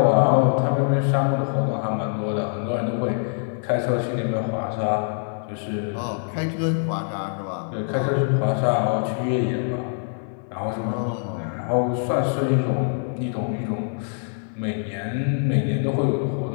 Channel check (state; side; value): silent; right; 56 dB below the other